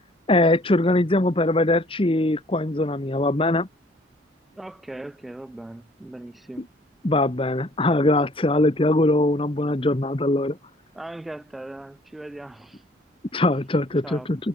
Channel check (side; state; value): both; normal; correlation 0.57